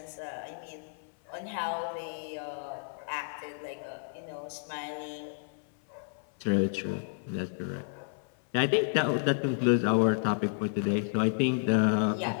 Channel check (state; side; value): silent; right; 57 dB below the other